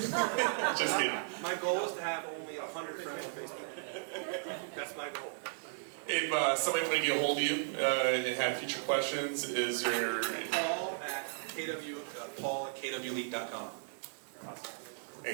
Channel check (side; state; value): left; silent; digital silence